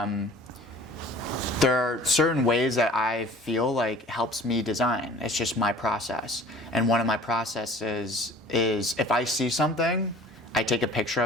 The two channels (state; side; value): normal; both; correlation 0.47